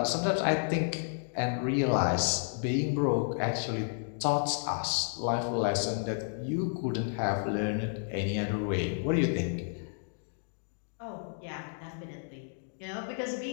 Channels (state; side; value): silent; right; digital silence